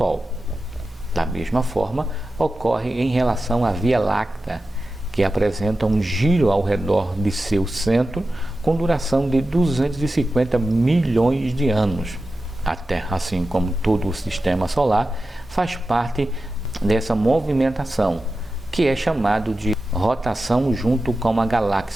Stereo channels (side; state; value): both; normal; correlation 0.93